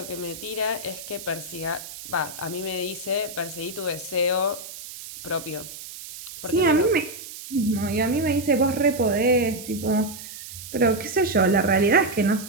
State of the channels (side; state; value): right; noise; hiss, 12 dB below the sound